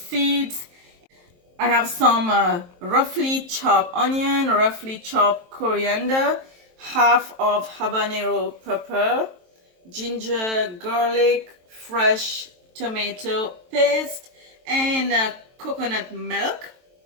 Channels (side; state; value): left; late; 23 ms